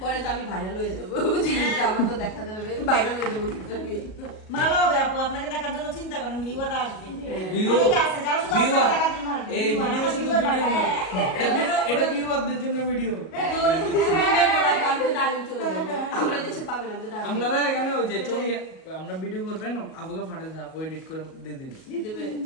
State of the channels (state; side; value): late; right; 37 ms